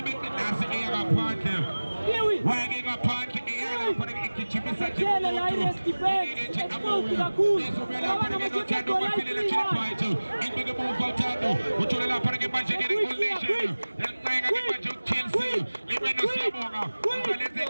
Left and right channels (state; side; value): inverted; both; correlation -1.00